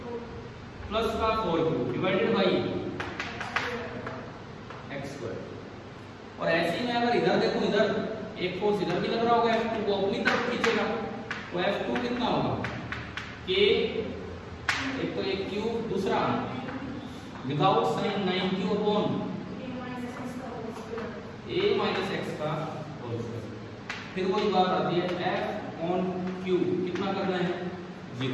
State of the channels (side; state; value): both; identical; correlation 1.00